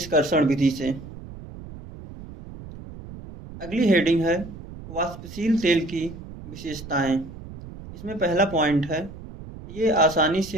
विधि से। अगली हेडिंग है वाष्पशील तेल की विशेषताएं। इसमें पहला पॉइंट है, ये आसानी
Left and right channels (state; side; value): noise; right; rumble, 14 dB below the sound